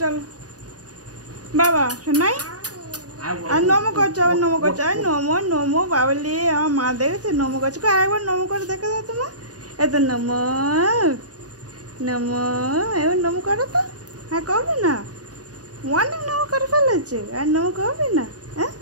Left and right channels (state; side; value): late; left; 0.68 ms